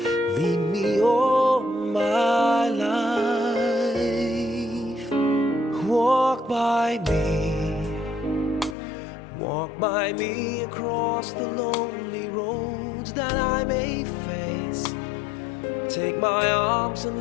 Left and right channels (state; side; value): drops out; right; at 8.8 s